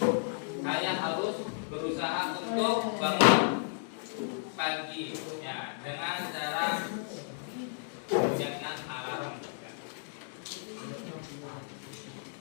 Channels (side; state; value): right; silent; digital silence